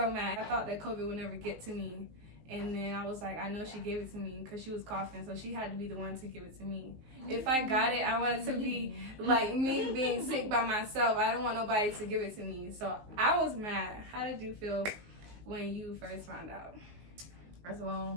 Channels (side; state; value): left; late; 19 ms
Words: mad. I thought that COVID would never get to me. And then I was like, I know she gave it to me because she was coughing, so she had to be the one to give it to me. If I got it, I wanted to be like me being sick by myself. I don't want nobody to give it to me. So I was mad. How did you feel when you first found out? First of